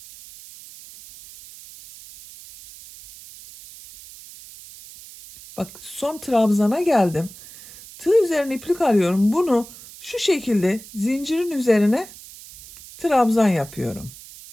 Bak son trabzana geldim. Tığ üzerine iplik alıyorum. Bunu şu şekilde zincirin üzerine trabzan yapıyorum.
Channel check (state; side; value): noise; right; hiss, 18 dB below the sound